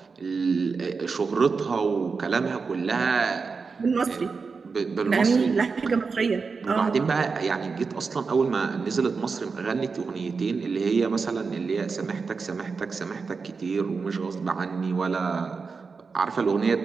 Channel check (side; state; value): left; quieter; 4.8 dB